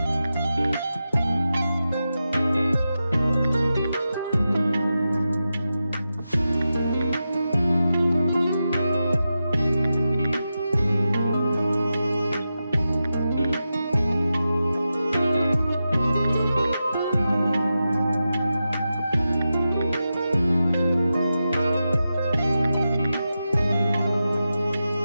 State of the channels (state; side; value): inverted; both; correlation -0.91